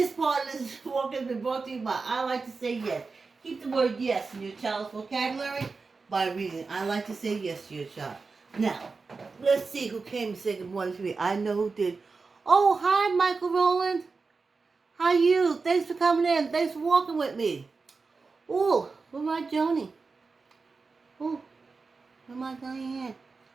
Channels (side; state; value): left; quieter; 4.3 dB